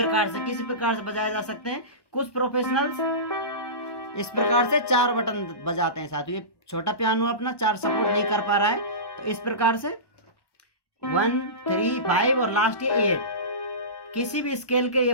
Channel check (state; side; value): late; right; 1.1 ms